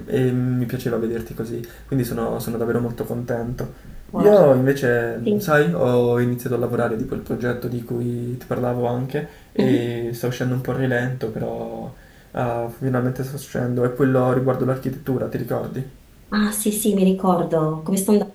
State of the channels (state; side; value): identical; both; correlation 1.00